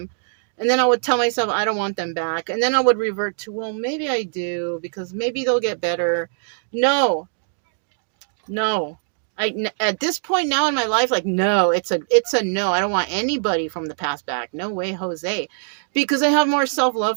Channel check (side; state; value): left; silent; digital silence